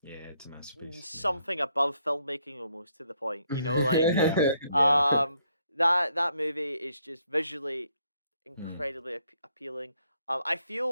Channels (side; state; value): both; inverted; correlation -0.72